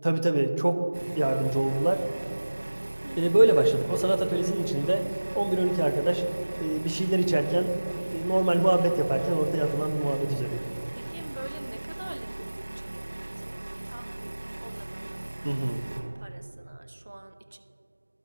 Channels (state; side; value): inverted; both; correlation -1.00